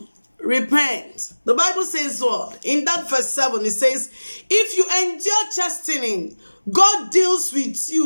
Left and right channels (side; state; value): both; inverted; correlation -1.00